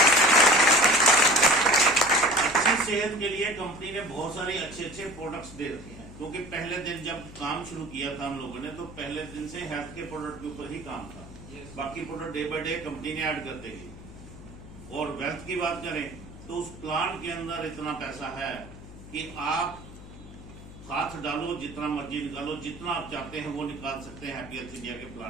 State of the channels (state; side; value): noise; left; hum, 16 dB below the sound